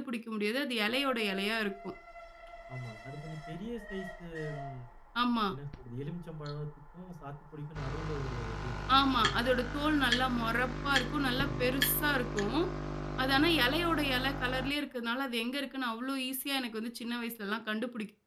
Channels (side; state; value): both; identical; correlation 1.00